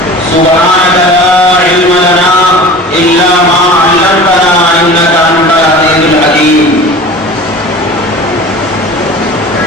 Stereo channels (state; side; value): normal; both; correlation 0.38